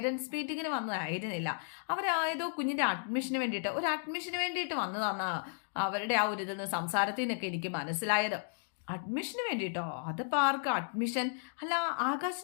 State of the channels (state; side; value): silent; right; digital silence